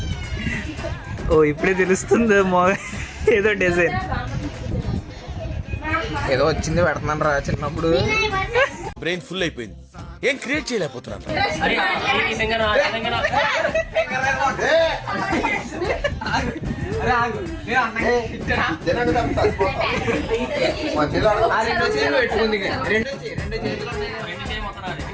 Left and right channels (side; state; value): both; identical; correlation 1.00